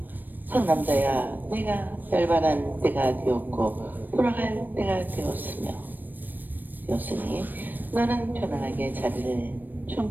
선남자야, 내가 열반한 때가 되었고 돌아갈 때가 되었으니 너는 편안하게 자리를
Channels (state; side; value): late; left; 0.090 ms